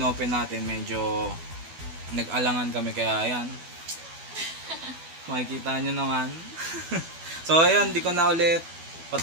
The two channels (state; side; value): late; left; 12 ms